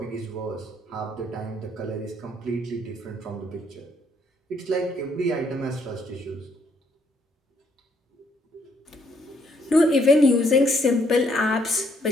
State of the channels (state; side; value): normal; both; correlation 0.70